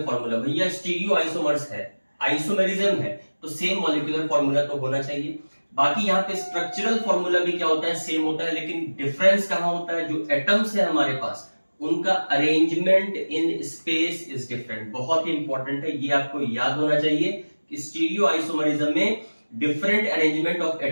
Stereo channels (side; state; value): both; inverted; correlation -1.00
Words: फॉर्मूला। भैया स्टीरियो आइसोमर्स है, आइसोमेरिज्म है, तो सेम मॉलिक्यूलर फॉर्मूला तो होना चाहिए। बाकी यहाँ पे स्ट्रक्चरल फॉर्मूला भी क्या होता है, सेम होता है, लेकिन डिफरेंस कहां होता है, जो एटम्स है हमारे पास उनका arrangement in space is different. बहुत ही इंपॉर्टेंट है, ये आपको याद होना चाहिए कि स्टीरियो आइसोमरिज्म में different arrangement of